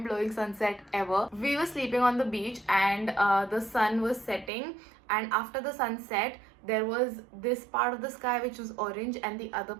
sunset ever. We were sleeping on the beach, and the sun was setting, and after the sunset there was this part of the sky which was orange and the other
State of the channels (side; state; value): left; drops out; at 4.5 s